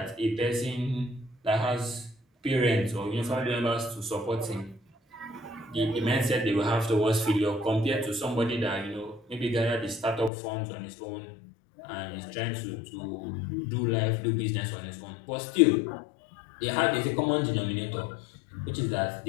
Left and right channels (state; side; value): drops out; right; at 10.3 s